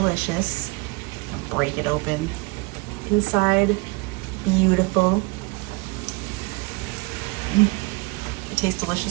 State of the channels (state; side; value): quieter; left; 27.2 dB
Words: Break it open. Inside, beautiful. It tastes